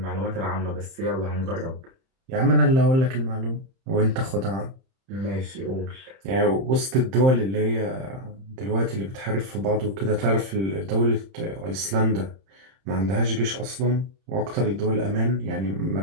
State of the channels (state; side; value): late; left; 31 ms